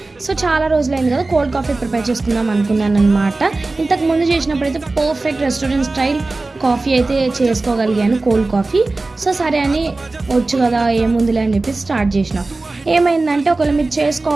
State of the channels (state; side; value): quieter; left; 3.3 dB